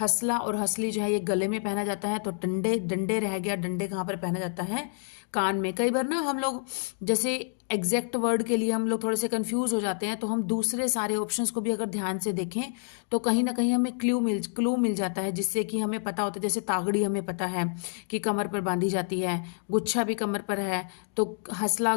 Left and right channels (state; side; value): silent; right; digital silence